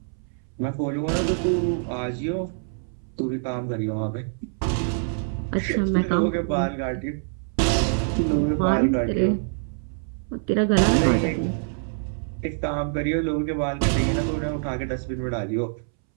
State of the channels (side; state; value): left; silent; 62 dB below the other